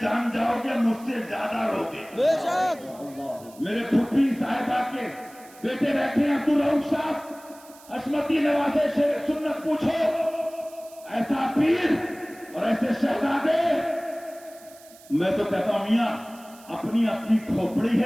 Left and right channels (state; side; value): noise; right; hiss, 23 dB below the sound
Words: جان جاؤ گے مجھ سے زیادہ روگے. میرے پھپھی صاحبہ کے بیٹے بیٹھے ہیں عبدالرؤف صاحب، عصمتی نوازے سے سنت پوچھو. ایسا پیر اور ایسے شہزادے. میں تو کہتا ہوں میاں اپنی اپنی کھوپڑی